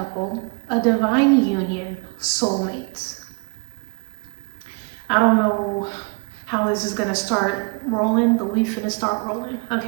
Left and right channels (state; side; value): quieter; left; 33.7 dB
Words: a divine union, soulmates. I don't know how this is gonna start rolling, but we finna start rolling,